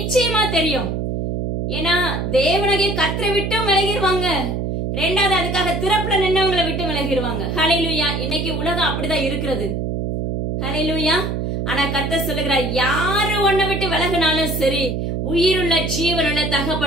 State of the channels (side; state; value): right; noise; hum, 2 dB below the sound